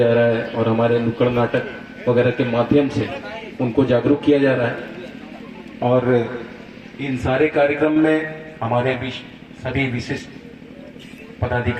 रहा है और हमारे नुक्कड़ नाटक वगैरह के माध्यम से उनको जागरूक किया जा रहा है। और इन सारे कार्यक्रम में हमारे सभी विशिष्ट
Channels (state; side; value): identical; both; correlation 1.00